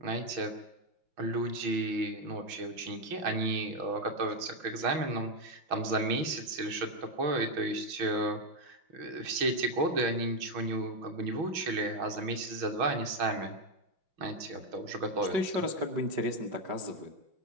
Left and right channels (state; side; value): late; left; 6.3 ms